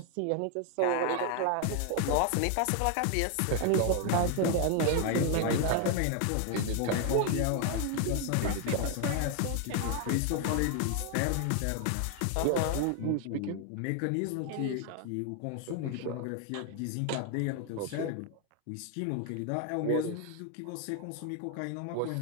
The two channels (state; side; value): different; both; correlation 0.00